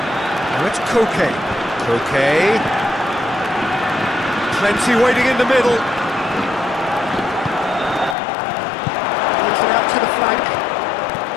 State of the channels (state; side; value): drops out; right; at 8.2 s